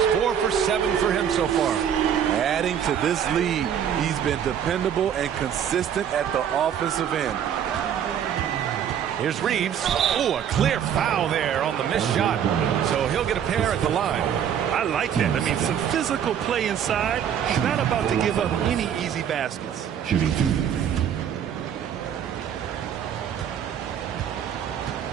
4 for 7 for him so far. Adding to this lead, he's been dependable and consistent at the offensive end. Here's Reeves. Oh, a clear foul there on the missed shot. So he'll get a pair at the line. I like that. I mean, some physical play inside. He's not about to give up any easy baskets. Shooting 2.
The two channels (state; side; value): quieter; left; 8.9 dB